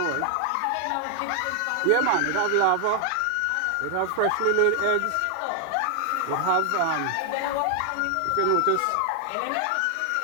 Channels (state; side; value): different; both; correlation 0.00